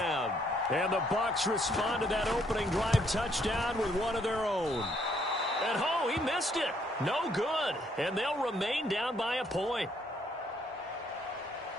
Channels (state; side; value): normal; both; correlation 0.69